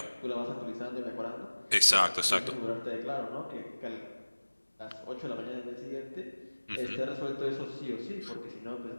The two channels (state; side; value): inverted; both; correlation -1.00